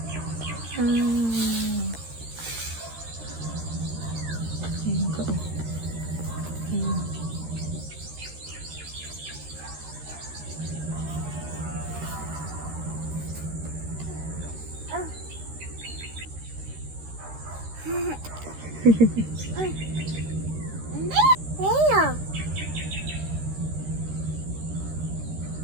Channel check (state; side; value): late; left; 13 ms